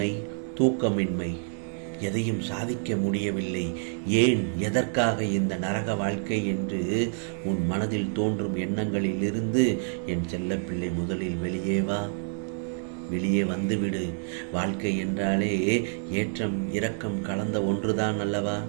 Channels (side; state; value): left; silent; digital silence